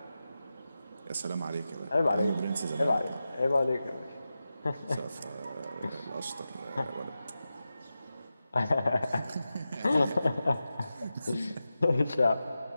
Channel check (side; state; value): both; inverted; correlation -0.92